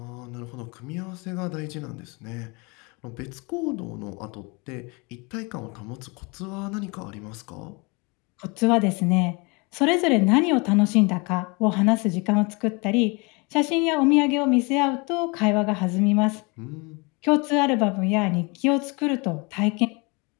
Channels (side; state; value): right; quieter; 29.0 dB